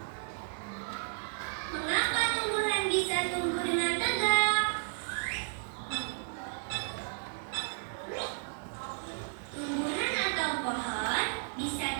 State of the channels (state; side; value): silent; left; digital silence